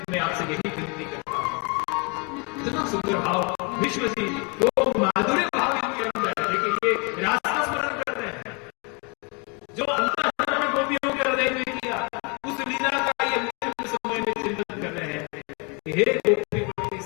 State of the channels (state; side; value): quieter; right; 31.3 dB